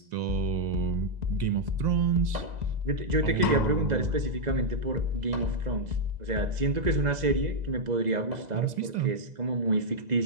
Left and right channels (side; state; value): left; late; 2.0 ms